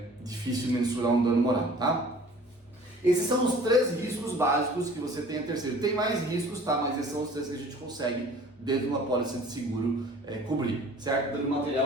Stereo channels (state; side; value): normal; both; correlation 0.48